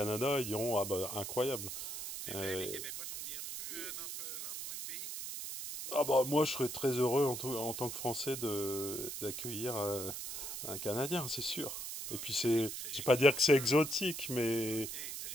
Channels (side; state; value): right; noise; hiss, 6 dB below the sound